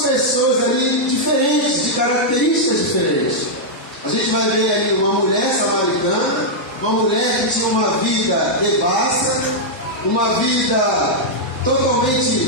pessoas ali diferentes, de características diferentes. A gente vai ver ali uma mulher samaritana, uma mulher que tinha uma vida devassa, uma vida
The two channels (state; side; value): normal; both; correlation -0.05